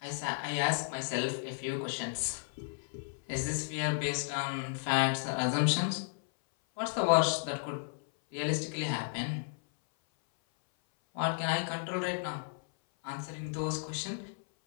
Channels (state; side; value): silent; right; 55 dB below the other